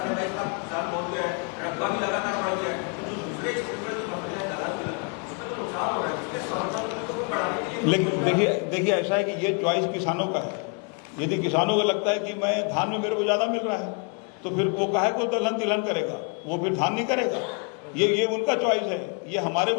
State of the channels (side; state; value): right; quieter; 35.6 dB